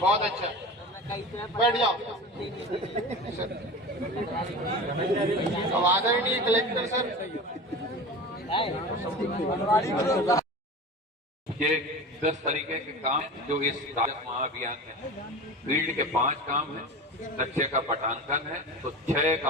अच्छा, बैठ जाओ। अब आदरणीय कलेक्टर सर, ये 10 तरीके के काम जो इस राजस्व महाअभियान में फील्ड के 5 काम है, नक्शे का पटांकन है, तो 6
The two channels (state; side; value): normal; both; correlation 0.32